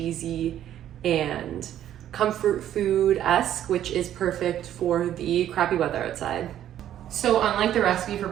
and comfort food-esque, which is perfect for the crappy weather outside. So unlike the recipe for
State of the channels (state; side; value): quieter; left; 11.3 dB